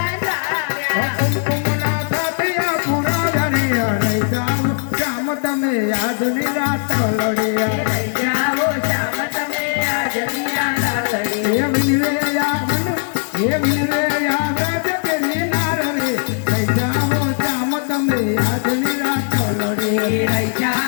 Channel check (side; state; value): right; silent; 58 dB below the other